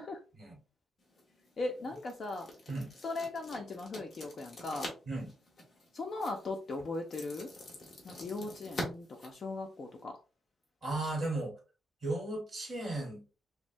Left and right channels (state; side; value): normal; both; correlation 0.79